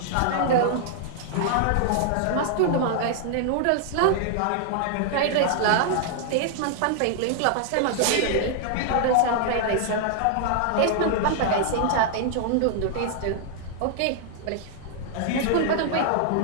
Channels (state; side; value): different; both; correlation -0.01